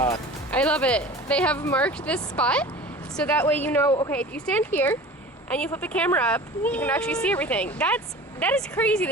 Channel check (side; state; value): both; normal; correlation 0.39